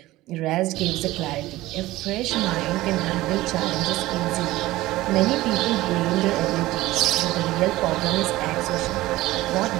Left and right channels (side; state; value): left; quieter; 17.4 dB